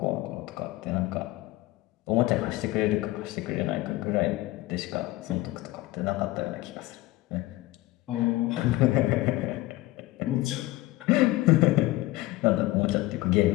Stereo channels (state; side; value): quieter; right; 18.4 dB